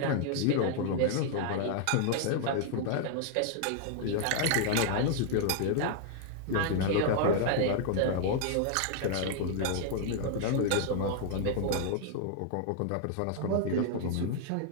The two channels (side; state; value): both; different; correlation -0.01